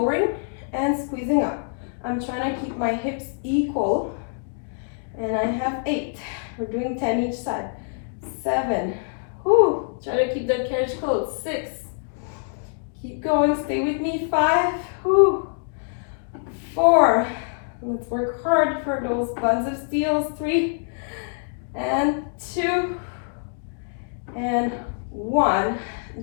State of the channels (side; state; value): right; silent; digital silence